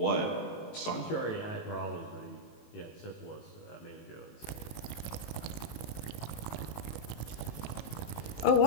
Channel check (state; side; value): late; right; 18 ms